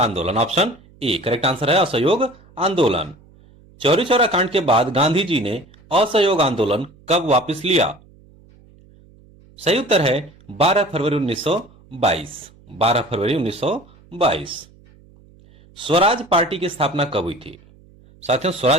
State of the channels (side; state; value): right; noise; hum, 27 dB below the sound